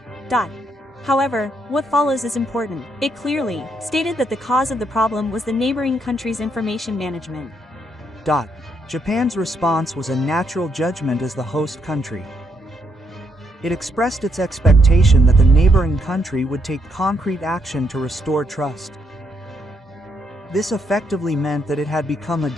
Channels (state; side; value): normal; both; correlation 0.75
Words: However, what follows is important. It clearly stated that the cause of the problem was the neighboring country's information management. Japan's response was a natural judgment as the host country. It expressed its expectation that the neighboring country would take concrete action to restore trust. This effectively meant that it had become a